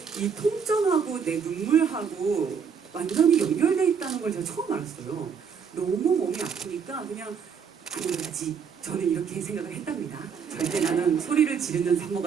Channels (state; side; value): quieter; left; 6.6 dB